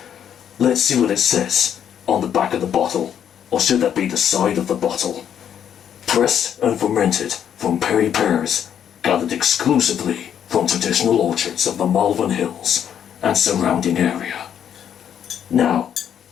Let's see what it says on the back of the bottle. Or should that be the side of the bottle? Pressed and fermented from perry pears, gathered exclusively from traditional orchards of the Malvern Hills and surrounding area. Now,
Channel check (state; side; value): quieter; right; 9.1 dB